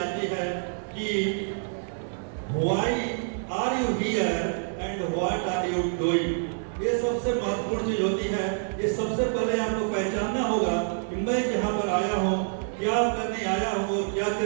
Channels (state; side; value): silent; left; digital silence